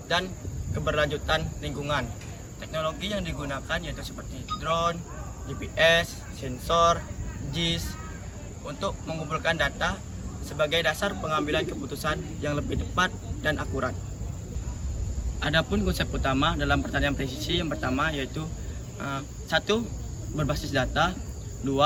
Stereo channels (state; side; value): identical; both; correlation 1.00